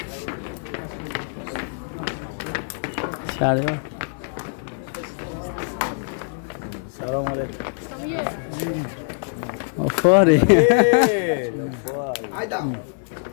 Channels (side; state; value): right; silent; 60 dB below the other